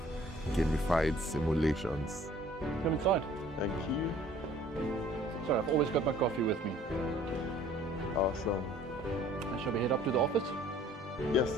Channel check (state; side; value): normal; both; correlation 0.54